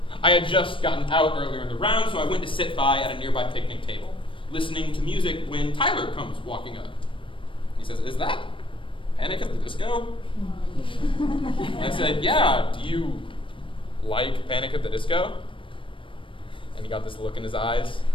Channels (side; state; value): right; late; 0.25 ms